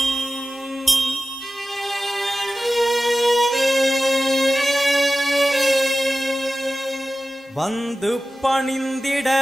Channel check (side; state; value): both; normal; correlation 0.94